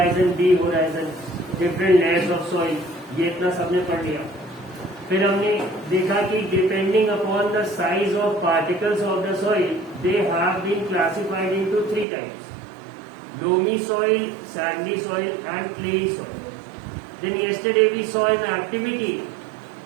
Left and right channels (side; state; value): left; drops out; at 12.1 s